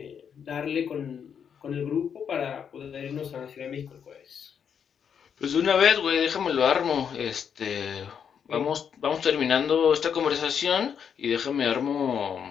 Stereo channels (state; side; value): quieter; right; 7.6 dB